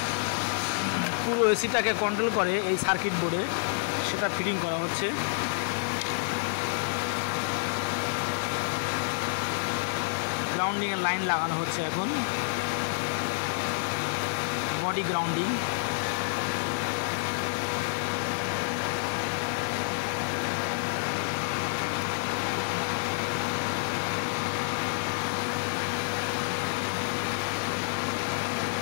পুরো এসিটাকে কন্ট্রোল করে এই সার্কিট বোর্ডে, সেটা ফিটিং করা হচ্ছে। গ্রাউন্ডিংয়ের লাইন লাগানো হচ্ছে এখন। Body grounding.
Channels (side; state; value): right; silent; digital silence